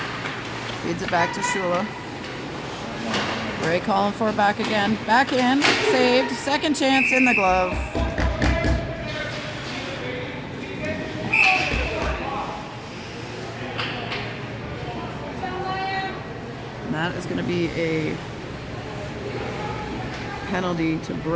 Feeds it back to Shula. Bray calling for it back again. Back in. Saved. Second chance in the glove. And that is going to be a penalty to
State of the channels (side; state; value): both; identical; correlation 1.00